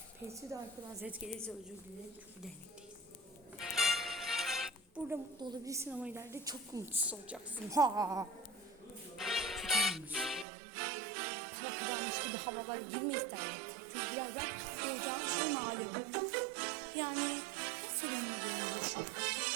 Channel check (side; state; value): left; drops out; at 10.5 s